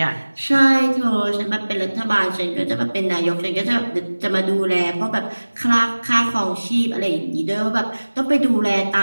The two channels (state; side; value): inverted; both; correlation -1.00